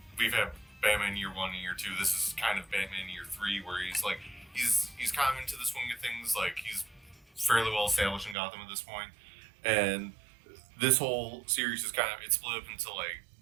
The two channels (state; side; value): drops out; left; at 8.3 s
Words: we've had Batman Year 1 and Year 2. This is kind of Batman Year 3, where he's kind of into the swing of things. Like, he's fairly well established in Gotham at this point. And this whole series is it's split up into I